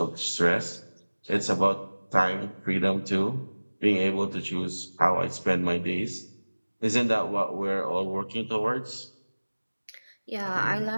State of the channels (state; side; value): inverted; both; correlation -1.00